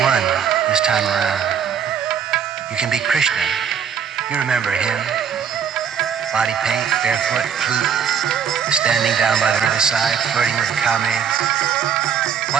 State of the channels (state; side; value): quieter; left; 7.6 dB